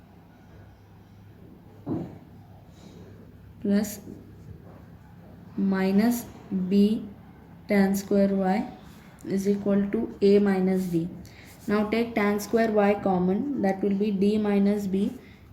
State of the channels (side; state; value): both; identical; correlation 1.00